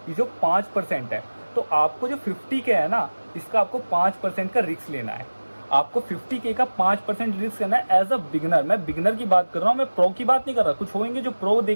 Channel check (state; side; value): inverted; both; correlation -1.00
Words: ये जो 5% है, तो आपको जो 50K है ना, इसका आपको 5% का रिस्क लेना है। आपको 50K का 5% रिस्क करना है एज अ बिगनर। मैं बिगनर की बात कर रहा हूँ, मैं प्रो की बात नहीं कर रहा। कुछ होंगे जो प्रो